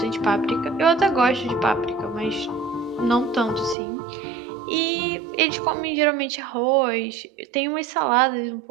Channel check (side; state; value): left; drops out; at 3.8 s